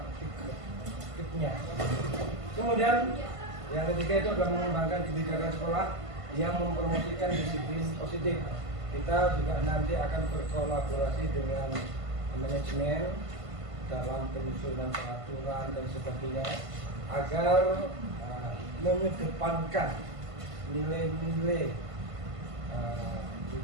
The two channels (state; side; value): late; left; 1.5 ms